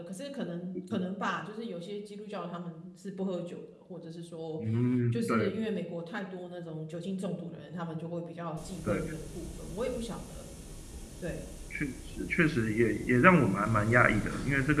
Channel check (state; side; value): identical; both; correlation 1.00